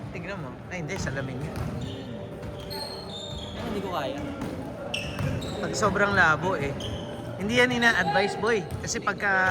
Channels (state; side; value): identical; both; correlation 1.00